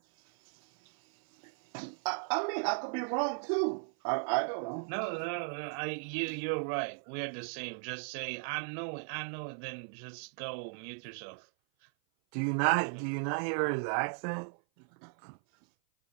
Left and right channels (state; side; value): silent; left; 54 dB below the other